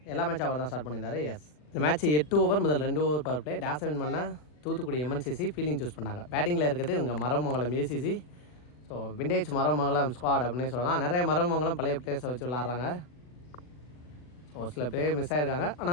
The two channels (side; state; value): right; late; 40 ms